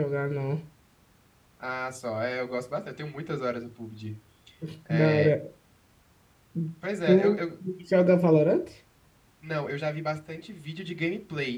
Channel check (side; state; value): both; identical; correlation 1.00